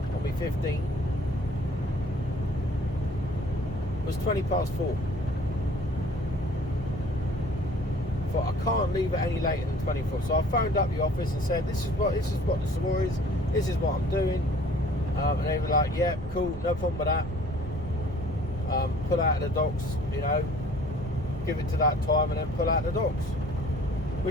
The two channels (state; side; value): normal; both; correlation 0.52